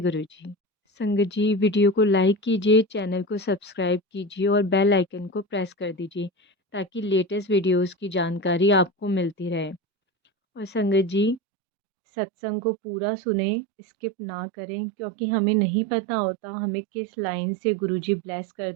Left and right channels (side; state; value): left; drops out; at 11.4 s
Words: गुरुजी। संगत जी वीडियो को लाइक कीजिए, चैनल को सब्सक्राइब कीजिए और बेल आइकन को प्रेस कर दीजिए ताकि लेटेस्ट वीडियोस की जानकारी आपको मिलती रहे। और संगत जी सत्संग को पूरा सुने, स्किप ना करें क्योंकि हमें नहीं पता होता हमें किस लाइन से गुरुजी ब्लेस कर